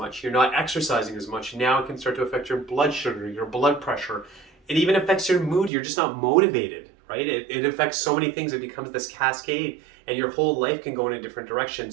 you're not exercising as much. Now it can start to affect your blood sugar, your blood pressure. It even affects your mood. You're just not motivated, right? It affects so many things. It becomes this cascade, and your whole life can go in a different direction.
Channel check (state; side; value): drops out; left; at 5.7 s